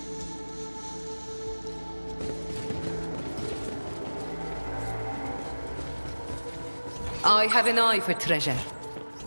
I have an eye for treasure.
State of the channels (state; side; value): inverted; both; correlation -1.00